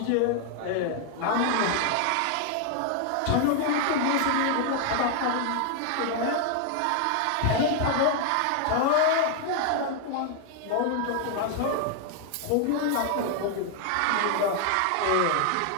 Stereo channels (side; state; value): both; different; correlation 0.00